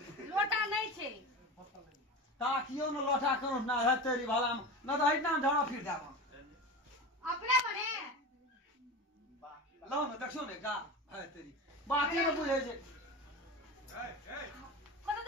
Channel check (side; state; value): both; normal; correlation 0.27